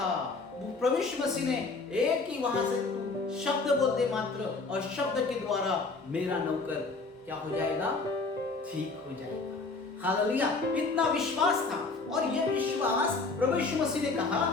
प्रभु यीशु मसीह ने एक ही वहां से तू शब्द बोलते मात्र, और शब्द के द्वारा मेरा नौकर क्या हो जाएगा, ठीक हो जाएगा। हालेलुया, इतना विश्वास था। और यह विश्वास प्रभु यीशु मसीह ने कहा,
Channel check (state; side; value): quieter; right; 3.8 dB